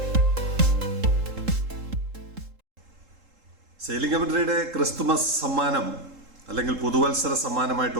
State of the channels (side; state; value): left; late; 3.7 ms